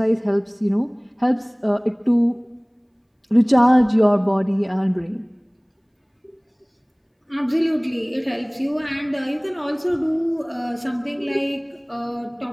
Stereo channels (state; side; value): identical; both; correlation 1.00